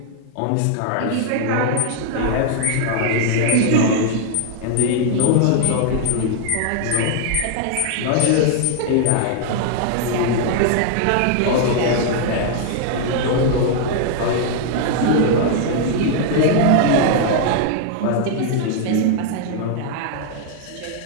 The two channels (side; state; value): both; different; correlation -0.01